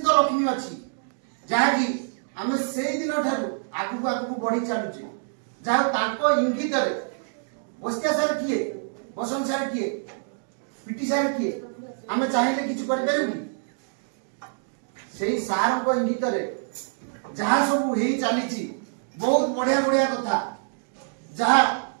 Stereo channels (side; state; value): left; silent; digital silence